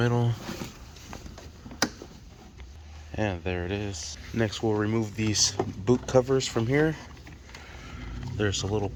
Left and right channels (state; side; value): identical; both; correlation 1.00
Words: And there it is. Next we'll remove these boot covers from here. There's a little